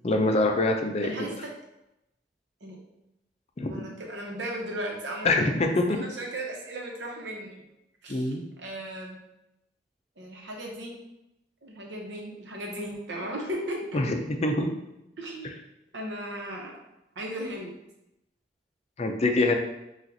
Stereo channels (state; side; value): normal; both; correlation 0.43